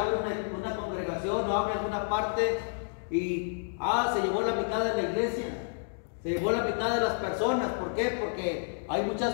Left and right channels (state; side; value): silent; right; digital silence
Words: una congregación o abre alguna parte y se llevó la mitad de la iglesia, se llevó la mitad de las personas. ¿Por qué? Porque hay muchas